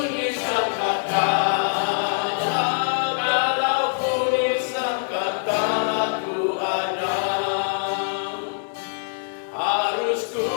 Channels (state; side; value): silent; right; 63 dB below the other